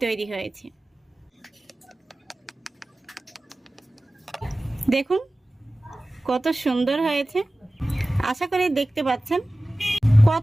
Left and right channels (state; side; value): normal; both; correlation 0.97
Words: তৈরি হয়েছে। দেখুন কত সুন্দর হয়েছে। আশা করি দেখতে পাচ্ছেন